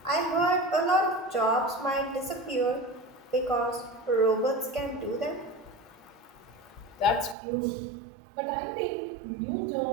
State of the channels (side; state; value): left; drops out; at 7.4 s